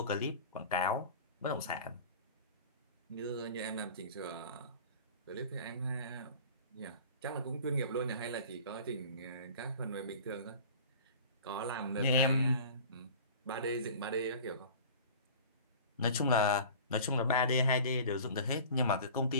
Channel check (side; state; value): both; inverted; correlation -0.41